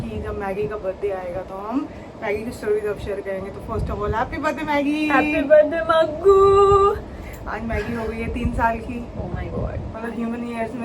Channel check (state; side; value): identical; both; correlation 1.00